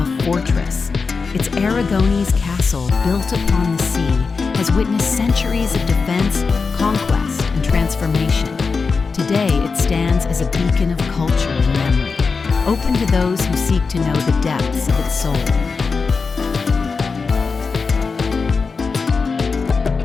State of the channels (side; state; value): right; quieter; 4.8 dB